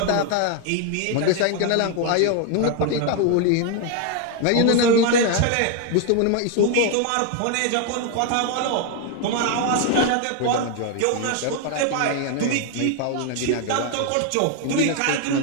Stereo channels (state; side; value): different; both; correlation 0.01